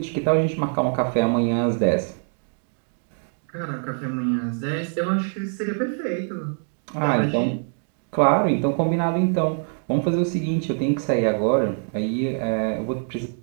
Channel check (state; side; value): silent; left; 55 dB below the other